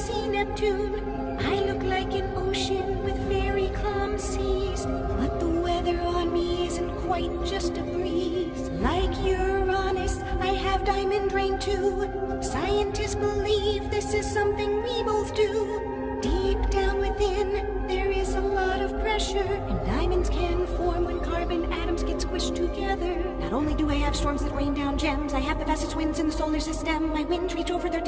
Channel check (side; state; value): both; identical; correlation 1.00